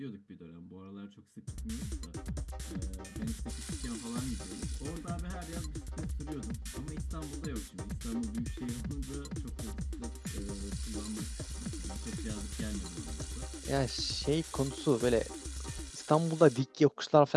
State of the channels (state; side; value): identical; both; correlation 1.00